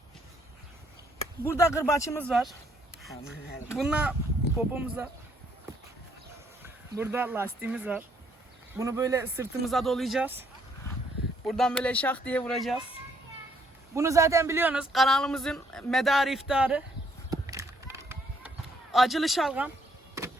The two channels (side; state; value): both; normal; correlation 0.68